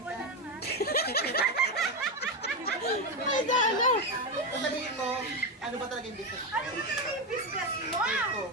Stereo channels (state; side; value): normal; both; correlation 0.11